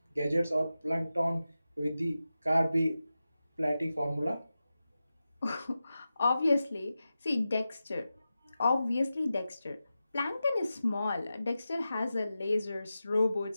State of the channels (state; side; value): inverted; both; correlation -0.93